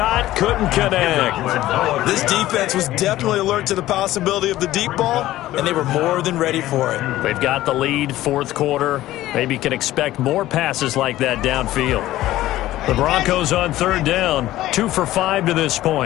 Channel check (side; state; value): right; quieter; 15.3 dB